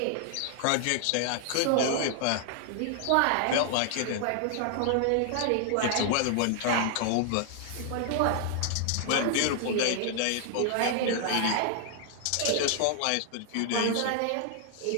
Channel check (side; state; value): both; different; correlation 0.00